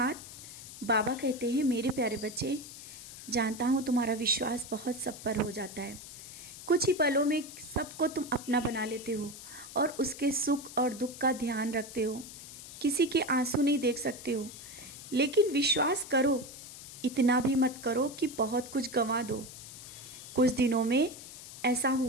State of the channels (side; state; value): left; noise; hiss, 14 dB below the sound